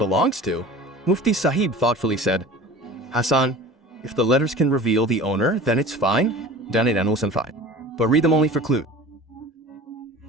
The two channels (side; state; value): both; normal; correlation 0.40